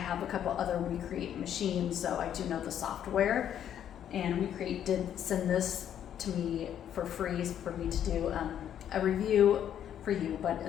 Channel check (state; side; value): quieter; right; 9.9 dB